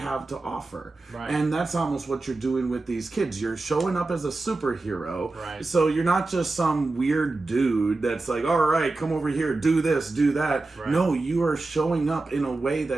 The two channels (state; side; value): quieter; left; 3.3 dB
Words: to offer. Right. And that's almost what you're doing with these kids. You're showing up as a superhero. Right. So you're not just some weird dude that's like, all right, come over here, do this, do that. Right. No, you are showing up in a way